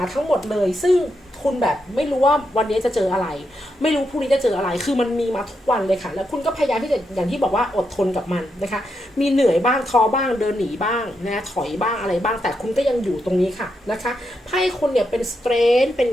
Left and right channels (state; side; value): normal; both; correlation 0.83